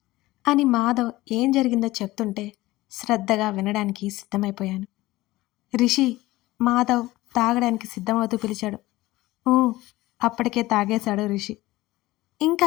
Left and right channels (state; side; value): quieter; right; 18.2 dB